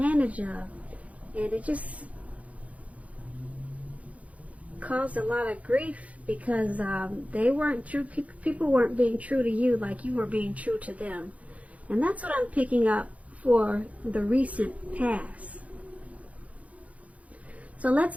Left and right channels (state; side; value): late; left; 0.067 ms